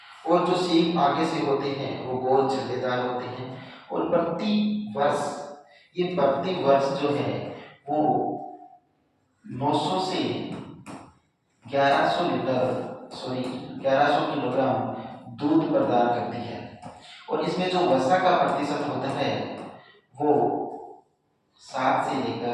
और जो सींग आगे से होते हैं वो गोल छल्लेदार होते हैं और प्रति वर्ष जो है वो 900 से 1100 किलोग्राम दूध प्रदान करती है और इसमें जो वसा का प्रतिशत होता है वो 7 से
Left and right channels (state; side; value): identical; both; correlation 1.00